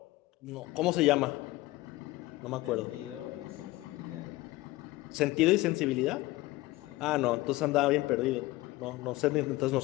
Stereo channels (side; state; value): right; quieter; 19.0 dB